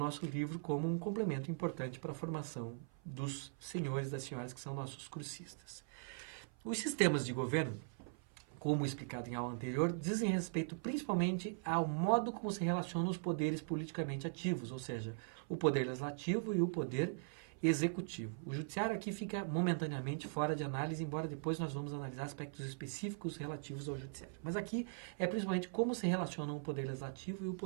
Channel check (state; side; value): silent; left; 51 dB below the other